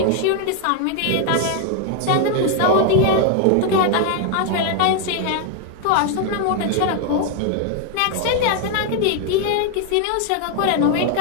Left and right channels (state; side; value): different; both; correlation 0.00